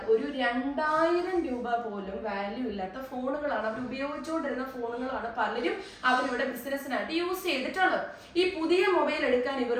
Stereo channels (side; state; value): both; identical; correlation 1.00